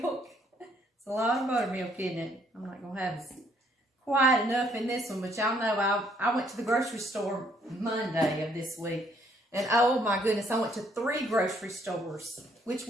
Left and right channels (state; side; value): normal; both; correlation 0.67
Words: It's a lot of buttermilk, isn't it? I'm not going to have quite enough in this one, but y'all know I went to the grocery store Monday of this week, and oh my goodness, I went to 3 grocery stores which